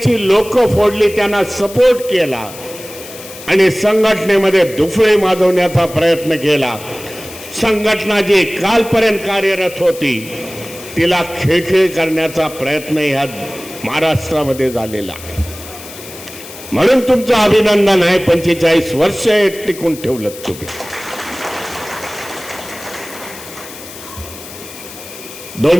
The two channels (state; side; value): noise; left; hiss, 15 dB below the sound